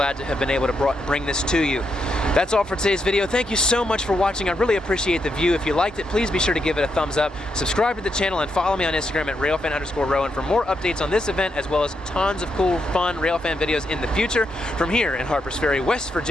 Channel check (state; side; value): normal; both; correlation 0.81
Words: to have been able to bring this to you. That's all for today's video. Thank you so much for watching. I really appreciate the view. If you liked it, please be sure to give it a thumbs up. Subscribe to the channel and follow me on Instagram at Railfan_Rowan for more updates on this event, as well as tons of cool, fun Railfan videos in the future. From here in Harper's Ferry, West